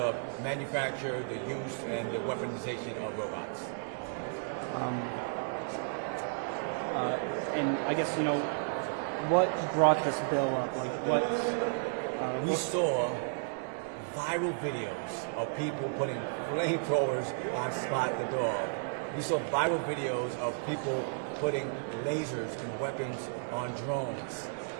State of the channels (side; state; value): left; silent; digital silence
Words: manufacture, the use, and the weaponization of robots. And I guess, what brought this bill up? Like, We saw viral videos of people putting flamethrowers on Spot the dog. We saw viral videos of people putting lasers and weapons on drones.